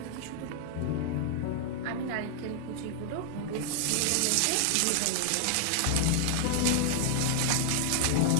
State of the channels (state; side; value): different; both; correlation 0.00